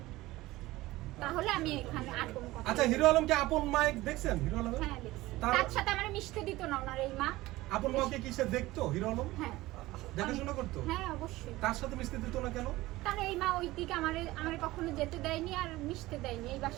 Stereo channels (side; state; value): left; quieter; 18.3 dB